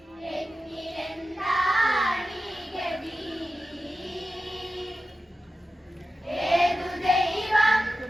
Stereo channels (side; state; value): both; normal; correlation 0.93